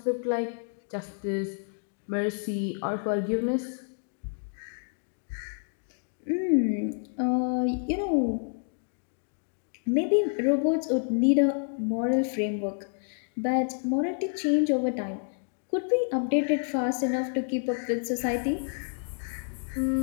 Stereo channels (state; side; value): silent; right; 59 dB below the other